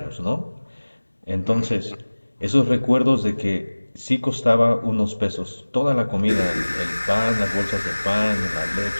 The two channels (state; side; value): inverted; both; correlation -1.00